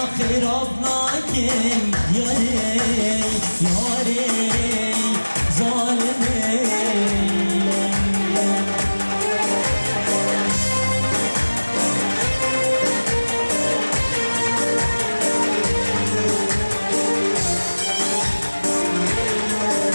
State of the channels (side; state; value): both; inverted; correlation -1.00